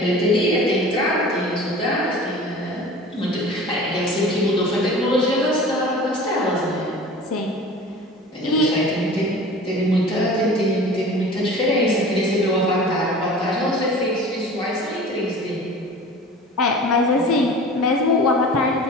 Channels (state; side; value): normal; both; correlation 0.40